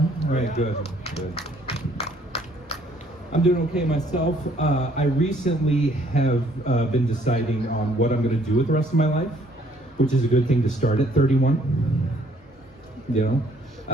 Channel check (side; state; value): both; normal; correlation 0.63